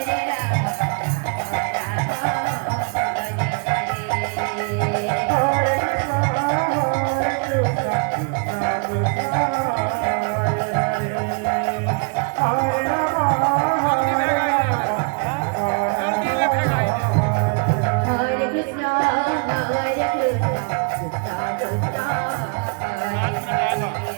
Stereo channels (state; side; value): quieter; left; 37.1 dB